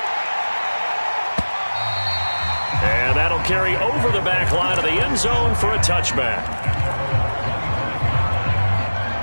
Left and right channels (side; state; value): both; inverted; correlation -1.00